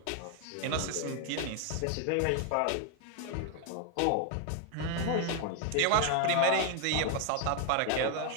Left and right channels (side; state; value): both; different; correlation 0.00